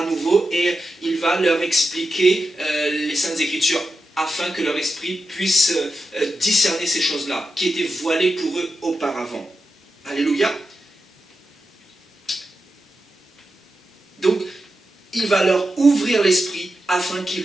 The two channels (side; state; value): both; normal; correlation 0.89